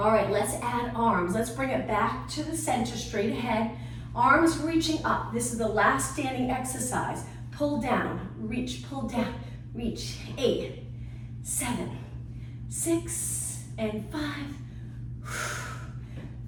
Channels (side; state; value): both; identical; correlation 1.00